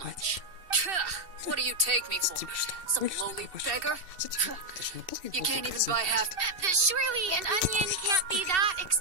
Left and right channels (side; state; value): left; late; 2.7 ms